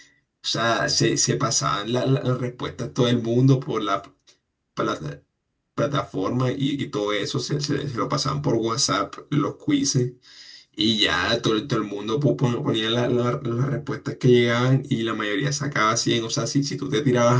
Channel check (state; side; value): identical; both; correlation 1.00